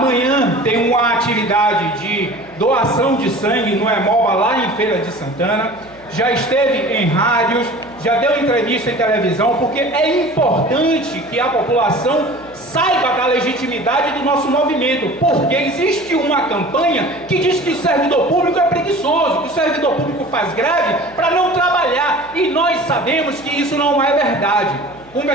tem uma atividade de doação de sangue no Hemoba, lá em Feira de Santana. Já esteve em rádios, já deu entrevista em televisão, porque é importante que a população saiba da legitimidade do nosso movimento, porque existe uma campanha que diz que o servidor público é preguiçoso, que o servidor público faz greve para não trabalhar, e nós sabemos que isso não é verdade.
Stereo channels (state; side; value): noise; right; hum, 26 dB below the sound